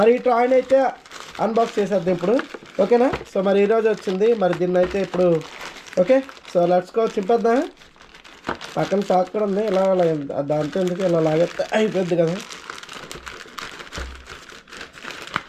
ఈ టాయ్ని అయితే అన్బాక్స్ చేసేద్దాం ఇప్పుడు, ఓకేనా. సో మరి ఈరోజు వచ్చింది మరి దీన్ని అయితే ఇప్పుడు ఓకే. సో లెట్స్ గో చింపేద్దాం. పక్కన షాక్ కూడా ఉంది, ఇలా దాంతో ఎందుకు ఇలా లాగేస్తే అయిపోద్ది కదా.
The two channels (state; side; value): identical; both; correlation 1.00